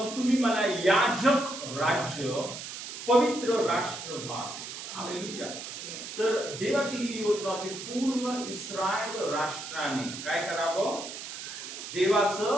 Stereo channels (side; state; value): right; noise; hiss, 9 dB below the sound